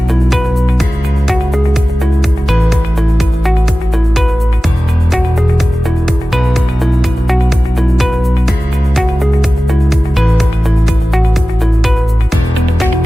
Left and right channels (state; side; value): normal; both; correlation 0.96